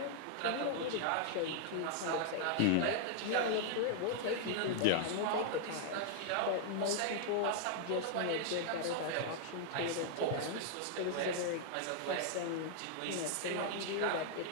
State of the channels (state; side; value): different; both; correlation 0.00